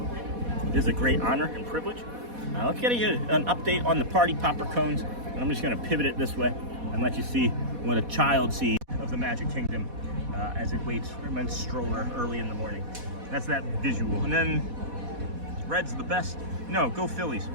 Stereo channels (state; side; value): late; left; 4.1 ms